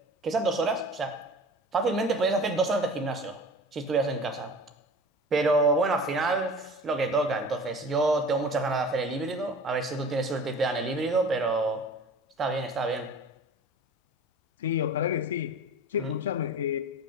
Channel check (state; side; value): normal; both; correlation 0.40